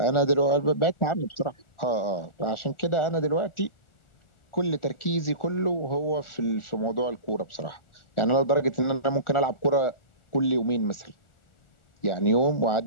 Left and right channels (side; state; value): right; late; 1.4 ms